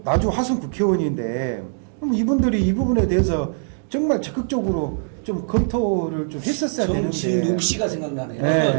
나주 화순 국회의원인데 그럼 이분들이 이 부분에 대해서 정말 적극적으로 좀 검토를 좀 했었어야 되는데 정진욱 씨가 생각나네요.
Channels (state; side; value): silent; left; digital silence